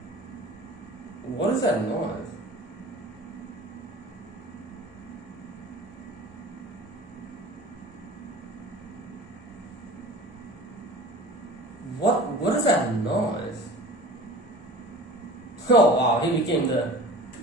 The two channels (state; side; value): normal; both; correlation 0.40